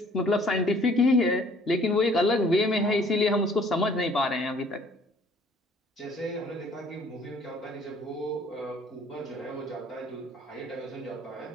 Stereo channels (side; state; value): both; normal; correlation 0.57